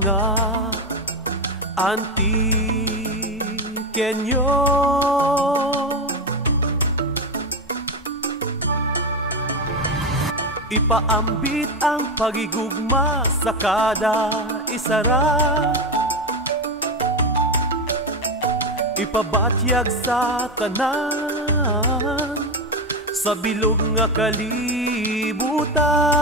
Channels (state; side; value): normal; both; correlation 0.14